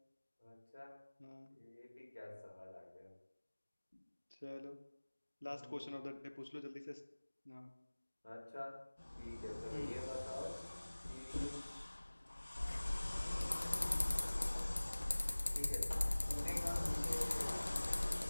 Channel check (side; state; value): both; inverted; correlation -1.00